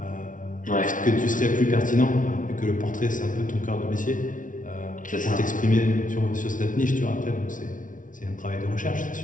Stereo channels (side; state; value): right; late; 0.38 ms